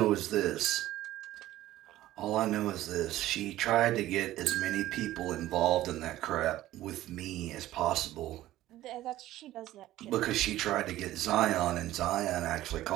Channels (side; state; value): left; quieter; 14.8 dB